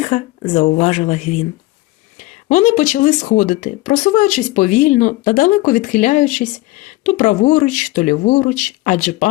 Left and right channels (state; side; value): quieter; right; 19.2 dB